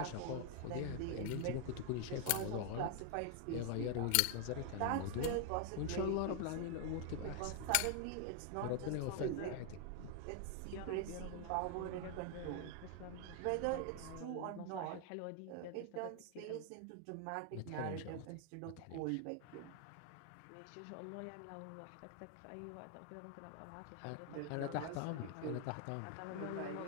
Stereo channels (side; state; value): both; different; correlation 0.00